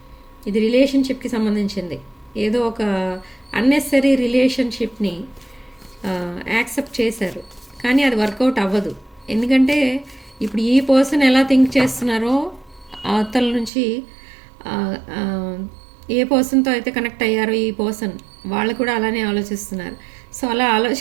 ఇది రిలేషన్షిప్కి సంబంధించింది. ఏదో ఒక అన్నెసరీ రిలేషన్షిప్ని యాక్సెప్ట్ చేశారు, కానీ అది వర్కౌట్ అవ్వదు. ఎందుకంటే ఇప్పుడు ఈ పర్సన్ ఎలా థింక్ చేస్తున్నారో అవతల నుంచి ఏ పర్సన్తో అయితే కనెక్ట్ అయ్యారో ఈ పర్సన్ వాళ్ళు కూడా అలానే ఆలోచిస్తున్నారు. సో అలా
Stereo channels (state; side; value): drops out; left; at 13.7 s